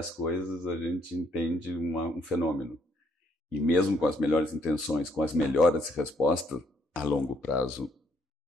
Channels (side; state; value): both; normal; correlation 0.69